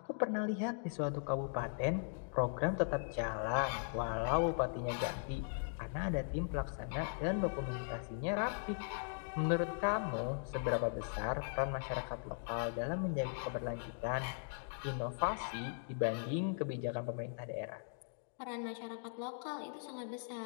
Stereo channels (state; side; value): silent; right; digital silence